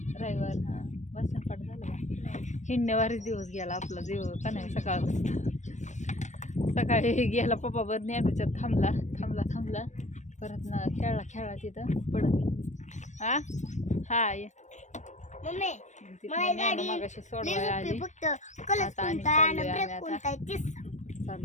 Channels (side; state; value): right; late; 0.34 ms